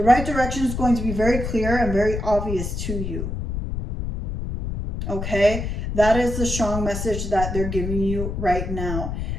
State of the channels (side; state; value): left; noise; rumble, 4 dB below the sound